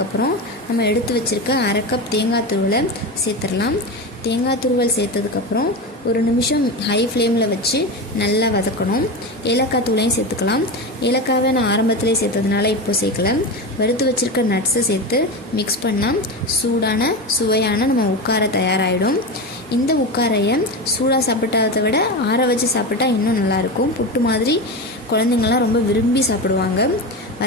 நம்ம எடுத்து வச்சுருக்க 1/2 கப் தேங்காய் துருவலை சேர்த்துடலாம். தேங்காய் துருவல் சேர்த்ததுக்கப்புறம் 1 நிமிஷம் ஹை ஃப்ளேமில் வச்சு நல்லா வதக்கணும். ஏலக்காய் தூளையும் சேர்த்துக்கலாம். ஏலக்காவை நான் ஆரம்பத்திலே சேர்த்ததுனால இப்போ சேர்க்கல. வறுத்து வச்சுருக்க நட்ஸை சேர்த்து மிக்ஸ் பண்ணால் சூடான சுவையான நம்ம உட்கார தயாராகிடும். இந்த உட்காரையை சூடாக சாப்பிட்டதை விட ஆற வச்சு சாப்பிட்டா இன்னும் நல்லாயிருக்கும். புட்டு மாதிரி குழந்தைங்கள்லாம் ரொம்ப விரும்பி சாப்பிடுவாங்க.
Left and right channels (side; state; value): both; normal; correlation 0.21